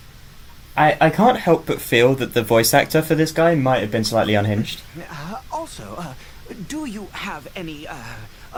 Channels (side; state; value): both; identical; correlation 1.00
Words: I can't help but feel that the voice actor for this guy might have been slightly unhinged. Also, do you have any